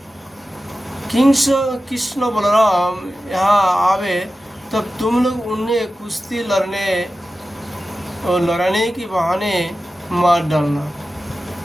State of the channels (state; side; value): normal; both; correlation 0.94